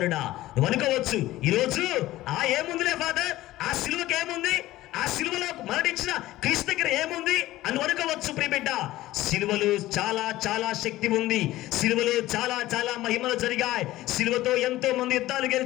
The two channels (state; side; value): quieter; right; 16.2 dB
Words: నువ్వు అనుకోవచ్చు, ఈరోజు ఏముందిలే ఫాదర్, ఆ సిలువకి ఏముంది, ఆ సిలువలో మరణించిన క్రీస్తు దగ్గర ఏముంది అని అనుకోవచ్చు. ప్రియబిడ్డ, సిలువలో చాలా చాలా శక్తి ఉంది. సిలువలో చాలా చాలా మహిమలు జరిగాయి. సిలువతో ఎంతో మంది యుద్ధాలు